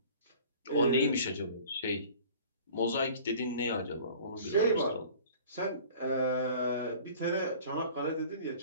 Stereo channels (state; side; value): inverted; both; correlation -0.46